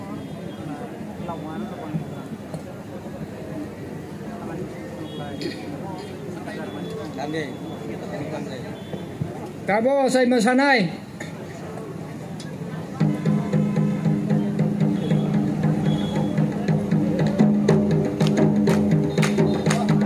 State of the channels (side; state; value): both; identical; correlation 1.00